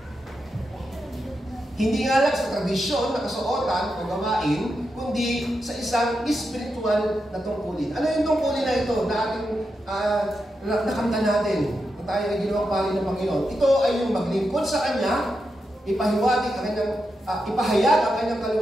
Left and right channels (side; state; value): both; normal; correlation 0.87